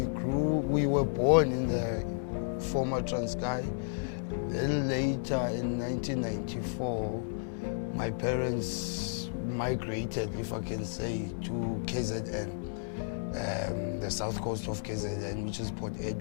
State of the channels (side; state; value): right; silent; digital silence